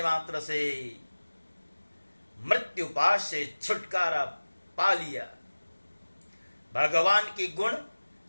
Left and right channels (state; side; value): inverted; both; correlation -1.00